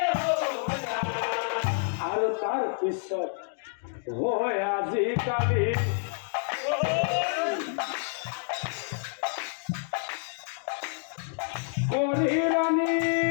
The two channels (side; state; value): right; silent; digital silence